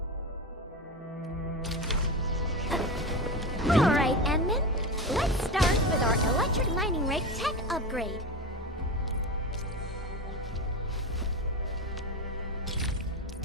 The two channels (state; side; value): normal; both; correlation 0.22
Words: Alright, Enman. Let's start with our electric mining rig tech upgrade.